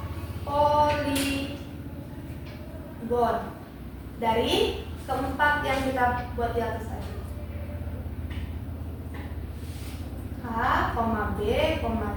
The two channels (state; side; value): identical; both; correlation 1.00